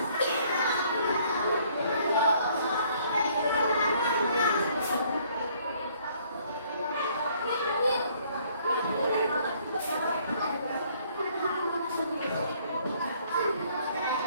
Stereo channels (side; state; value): both; inverted; correlation -0.62